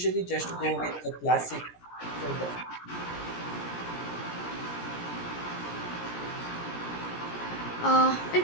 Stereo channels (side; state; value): right; late; 17 ms